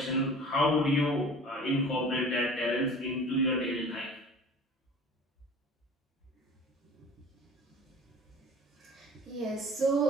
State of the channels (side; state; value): both; normal; correlation 0.42